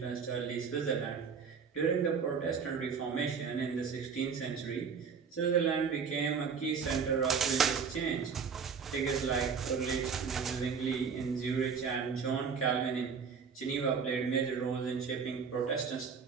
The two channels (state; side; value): quieter; left; 6.1 dB